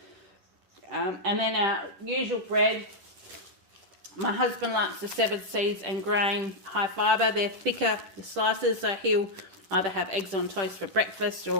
And then our usual bread. My husband likes the 7 seeds and grain high fibre. They're thicker slices, so he'll either have eggs on toast for breakfast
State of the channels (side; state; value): left; late; 10 ms